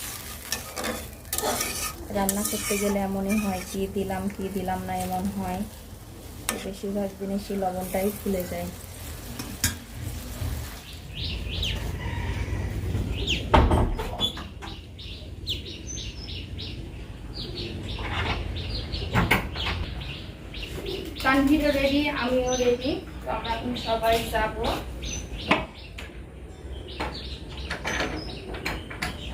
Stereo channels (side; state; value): both; identical; correlation 1.00